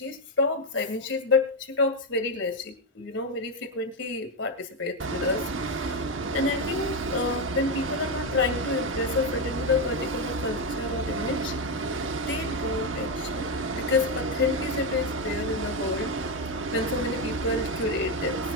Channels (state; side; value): normal; both; correlation 0.08